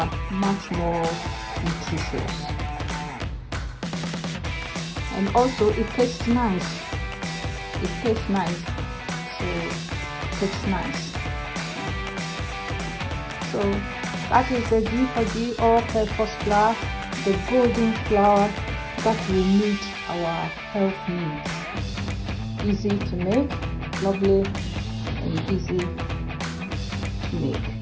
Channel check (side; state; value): both; identical; correlation 1.00